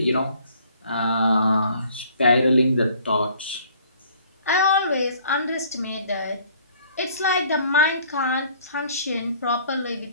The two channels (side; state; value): both; inverted; correlation -0.57